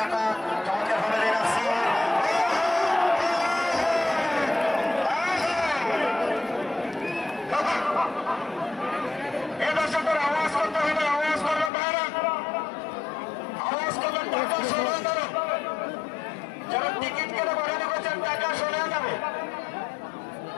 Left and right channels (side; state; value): right; drops out; at 11.7 s